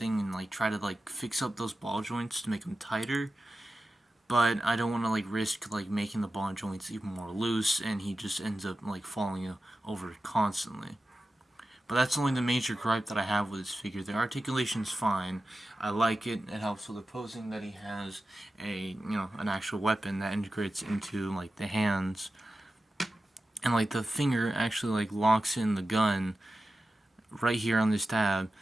and like try to like fix up those ball joints to make them tighter. But I don't want to like risk like making the ball joints even more loose, and he just ends up like falling over constantly. But that's only the major gripe that I have with this figure. The articulation's fine. I like it. It helps with the posing that he has an actual weapon that integrates into like the hands, and like the finger actually like locks in the gun right here on this tab,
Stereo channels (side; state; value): both; normal; correlation 0.93